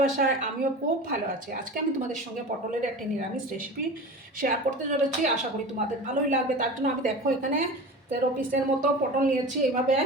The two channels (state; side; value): normal; both; correlation 0.33